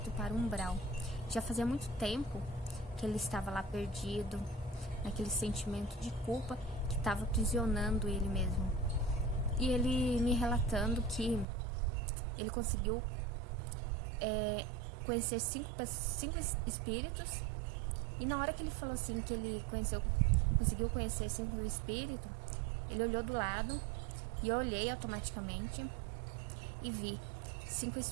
para o umbral. Já fazia muito tempo que ele estava lá perdido, naquele sentimento de culpa que estava aprisionando ele mesmo. E ele me relatando que ele conseguiu conhecer cinco espíritos. E na hora que ele falou assim, que ele conseguiu conhecer 5 espíritos, ele olhou do lado e eu olhei automaticamente e vi 5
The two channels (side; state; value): left; drops out; at 11.5 s